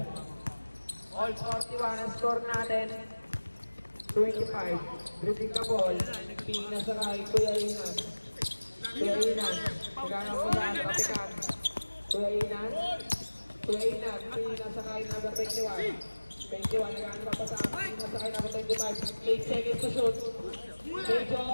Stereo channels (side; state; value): both; inverted; correlation -1.00